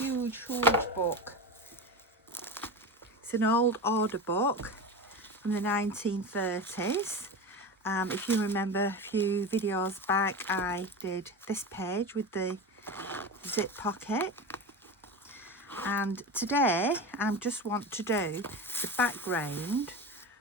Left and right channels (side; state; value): both; normal; correlation 0.25